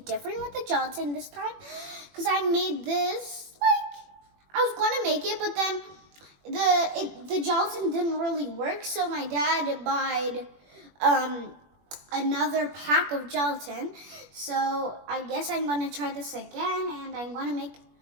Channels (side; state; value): left; late; 21 ms